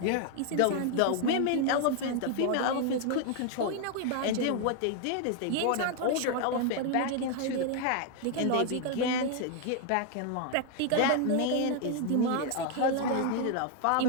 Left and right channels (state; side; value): different; both; correlation 0.00